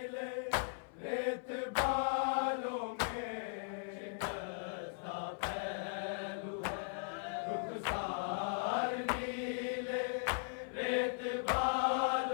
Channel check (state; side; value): silent; right; 52 dB below the other